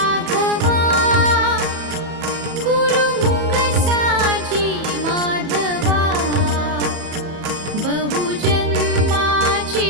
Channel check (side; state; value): left; late; 34 ms